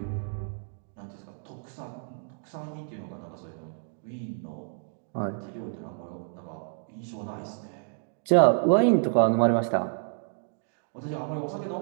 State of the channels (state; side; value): silent; left; digital silence